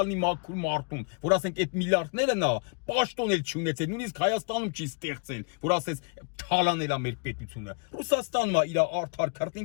մաքուր մարդուն, որ ասենք այդ միլիարդները նա պաշտոն էլ չունեցել, նույնիսկ Հայաստանում չի ստեղծել, որ ասես թալանել է մեր պետությունը։ Ռուսաստանն է իր արդար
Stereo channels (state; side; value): quieter; right; 36.5 dB